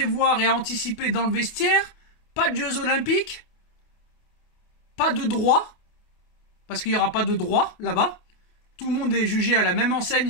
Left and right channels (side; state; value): right; late; 28 ms